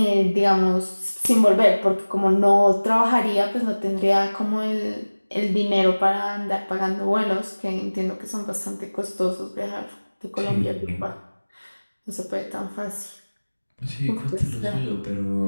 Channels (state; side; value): inverted; both; correlation -1.00